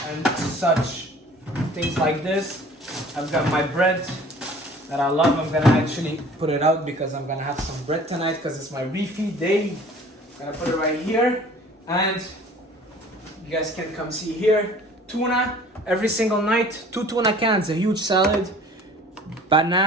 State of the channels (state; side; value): normal; both; correlation 0.49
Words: such. Things like this. I've got my bread that I love. I'm gonna actually put it out because I'm gonna have some bread tonight because it's my refeed day. I'm gonna put it right here. And you guys can come see here. Tuna every single night. 2 tuna cans, a huge salad.